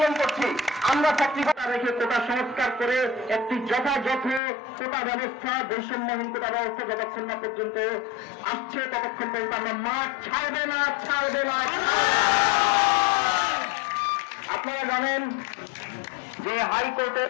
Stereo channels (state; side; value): drops out; right; at 4.4 s